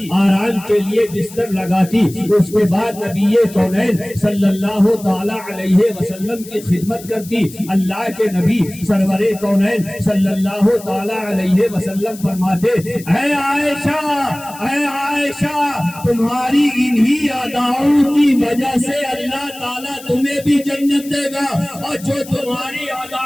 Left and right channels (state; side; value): noise; left; hiss, 17 dB below the sound